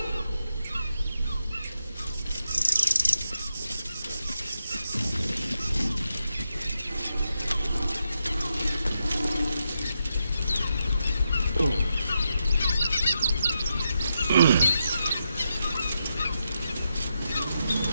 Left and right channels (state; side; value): inverted; both; correlation -0.84